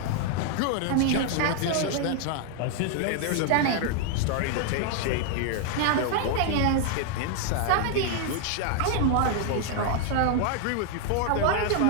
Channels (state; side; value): different; both; correlation 0.00